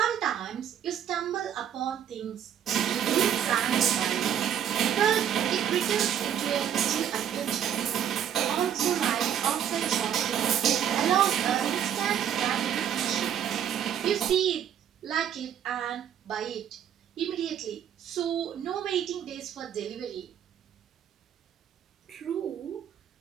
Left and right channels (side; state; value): left; quieter; 9.5 dB